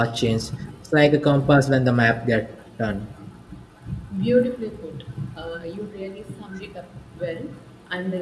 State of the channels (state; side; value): identical; both; correlation 1.00